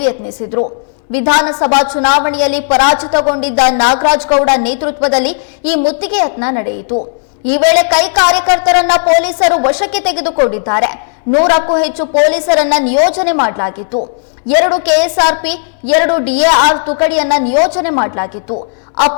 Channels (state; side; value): silent; right; digital silence